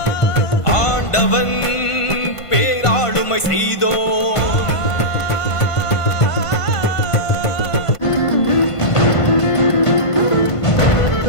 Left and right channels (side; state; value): right; late; 1.5 ms